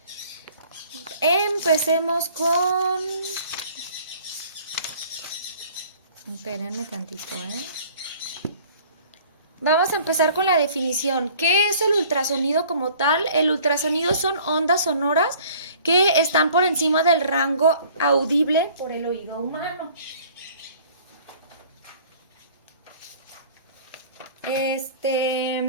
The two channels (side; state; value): both; inverted; correlation -0.52